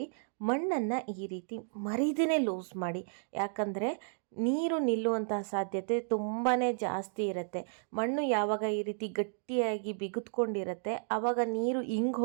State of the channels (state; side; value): silent; left; digital silence